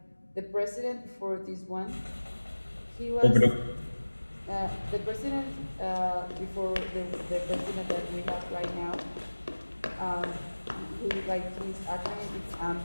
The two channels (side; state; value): both; inverted; correlation -1.00